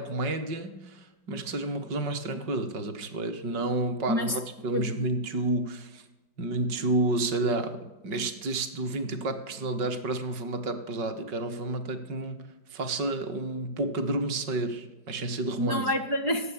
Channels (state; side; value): late; left; 5.3 ms